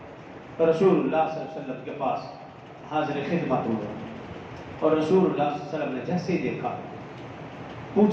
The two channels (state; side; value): identical; both; correlation 1.00